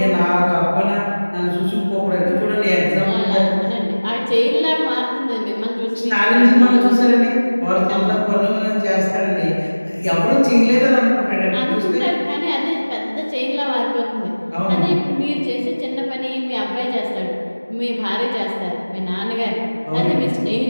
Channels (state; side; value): inverted; both; correlation -1.00